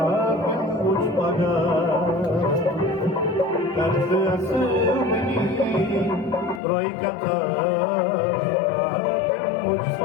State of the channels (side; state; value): right; drops out; at 6.6 s